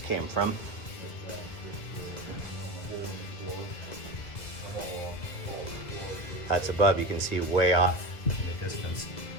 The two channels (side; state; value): right; late; 2.0 ms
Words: came from. That's above. You can see way off in the distance